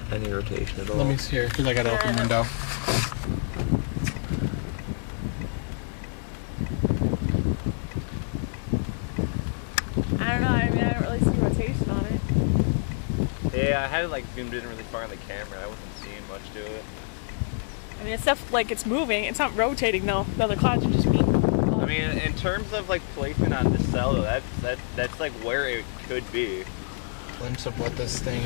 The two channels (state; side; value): silent; right; digital silence